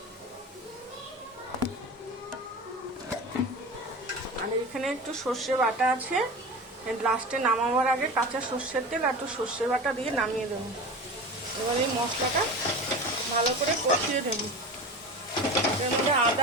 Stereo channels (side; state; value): both; normal; correlation 0.30